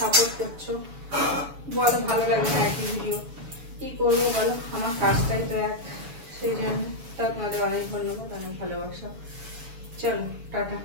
করছো। বলো ভালো লাগে না একই ভিডিও, কি করবো বলো, আমার কাজটাই তো এক, সেই জন্য তাও তোমাদের অনেক ধন্যবাদ, অনেক ভালোবাসা। চলো টাটা,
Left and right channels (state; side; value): late; left; 7.1 ms